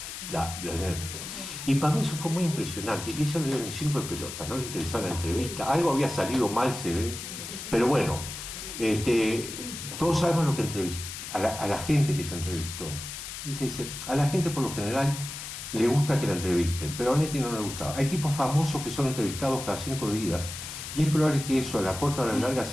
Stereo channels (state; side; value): noise; left; hiss, 9 dB below the sound